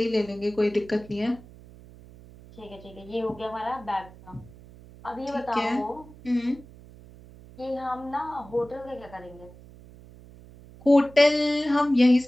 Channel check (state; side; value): noise; right; hum, 20 dB below the sound